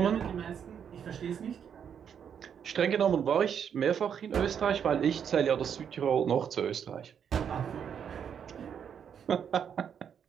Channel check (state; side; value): quieter; left; 8.0 dB